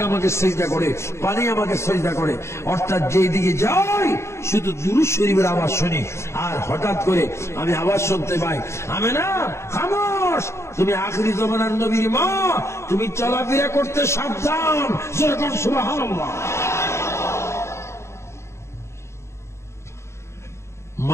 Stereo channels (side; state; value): right; late; 0.13 ms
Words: আমাকে সেজদা করে, পানি আমাকে সেজদা করে। অর্থাৎ যেই দিকে যাই শুধু দুরূদ শরীফের আওয়াজ শুনি। আর হঠাৎ করে আমি আওয়াজ শুনতে পাই, আমেনা খামোশ, তুমি আখিরি জামানার নবীর মা, তুমি চলাফেরা করতে সাবধান। যেরকম সুবহানাল্লাহ।